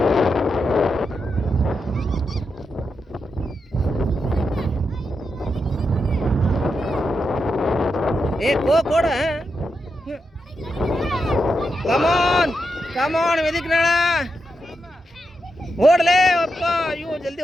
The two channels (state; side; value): normal; both; correlation 0.85